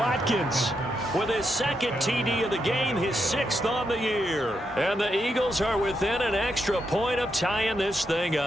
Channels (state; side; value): normal; both; correlation 0.82